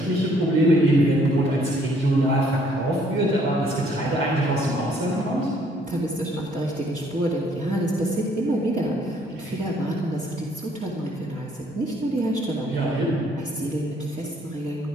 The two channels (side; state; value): both; normal; correlation 0.64